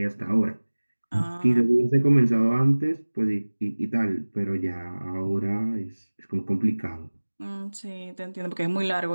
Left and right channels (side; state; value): both; inverted; correlation -1.00